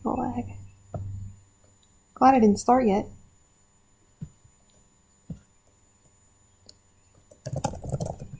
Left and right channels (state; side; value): identical; both; correlation 1.00